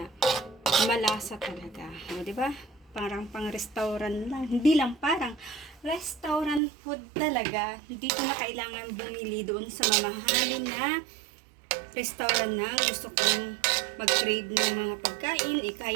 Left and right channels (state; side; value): drops out; left; at 6.6 s